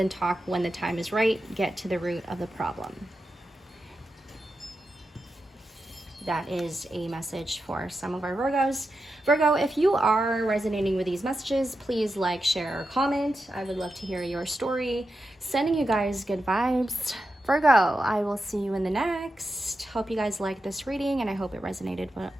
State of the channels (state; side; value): normal; both; correlation 0.89